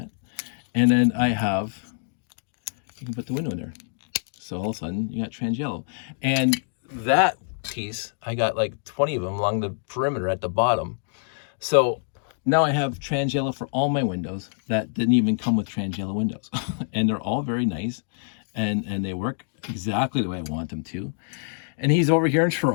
And then I have, you can put the window in there. So all of a sudden you got trans yellow. And that piece, I got like 20 of them along the perimeter at the bottom. So now I have trans yellow for all my windows that didn't even come with trans yellow windows. And they're all very nice, and they work exactly the way I want them to. And he's over here in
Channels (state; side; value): silent; right; digital silence